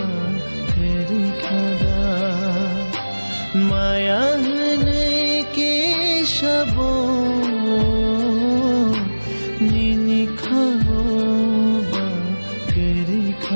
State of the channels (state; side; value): inverted; both; correlation -1.00